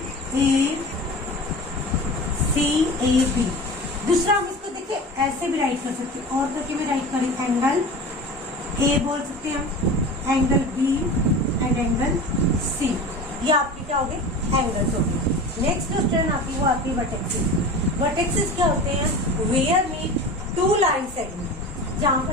A B. दूसरा हम इसको देखिए ऐसे भी राइट कर सकते हैं, और करके भी राइट करें। एंगल ए बोल सकते हैं हम, angle B and angle C. ये आपके क्या हो गए? एंगल्स हो गए। नेक्स्ट जो टर्न आती है वो आती है वर्टेक्सेस। वर्टेक्सेस क्या होते हैं? वेयर मीट 2 लाइन सेगमेंट, जहां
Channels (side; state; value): both; normal; correlation 0.34